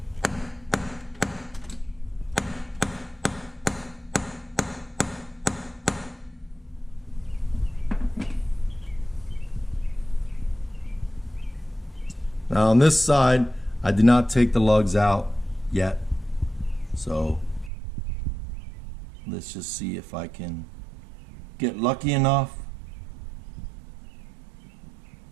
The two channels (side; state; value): left; drops out; at 17.7 s